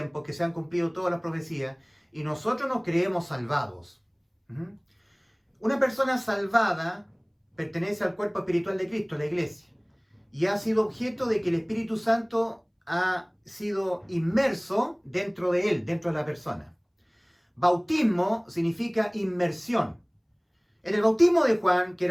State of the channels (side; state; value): both; identical; correlation 1.00